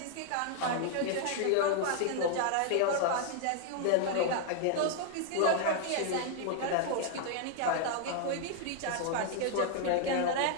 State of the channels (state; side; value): different; both; correlation 0.00